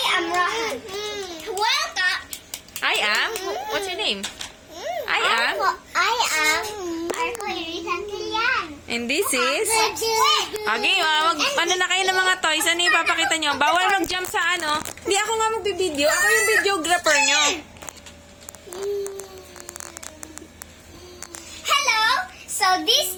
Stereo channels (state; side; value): identical; both; correlation 1.00